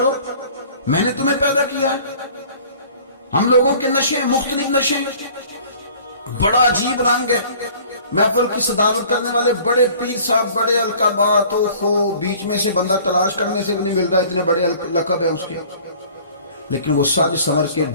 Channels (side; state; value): both; inverted; correlation -0.50